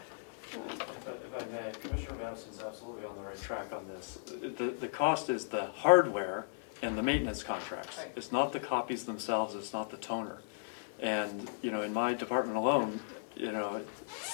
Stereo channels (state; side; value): silent; right; 54 dB below the other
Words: If I may, Commissioner Madison's absolutely on the right track on this. The cost is the hardware and the maintenance contracts. Right. It's not the copies themselves, it's not the toner. And, in my department alone,